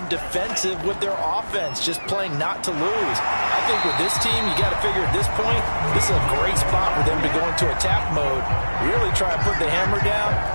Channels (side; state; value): both; inverted; correlation -1.00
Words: defensive with their offense, just playing not to lose. I think with this team, you got to figure at this point, this is a great spot for them to go into attack mode, really try and put the hammer down